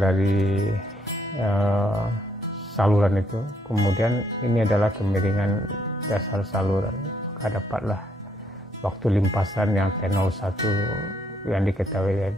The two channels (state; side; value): normal; both; correlation 0.71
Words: saluran itu. Kemudian ini adalah kemiringan dasar saluran. Maka dapatlah waktu limpasan yang T01 yang diketahui